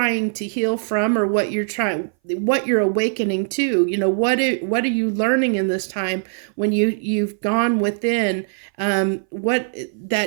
to heal from, or what you're awakening to. What are you learning in this time when you've gone within, what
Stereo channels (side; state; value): left; silent; 60 dB below the other